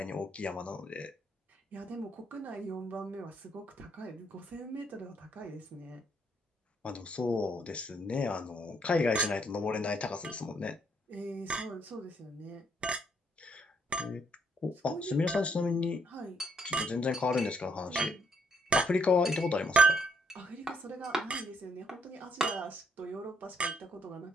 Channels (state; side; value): normal; both; correlation 0.71